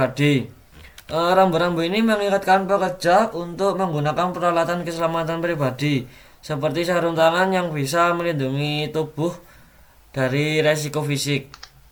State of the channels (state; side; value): identical; both; correlation 1.00